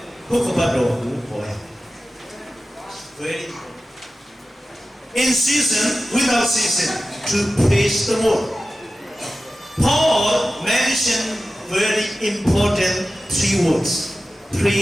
ဘုက္ခပတ်တော်ကိုဟောရ Very in season, without season, to praise the Lord. Paul mentioned very important 3 words.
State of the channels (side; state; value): both; normal; correlation 0.95